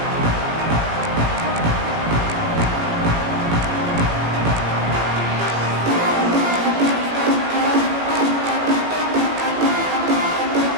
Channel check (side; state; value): left; late; 18 ms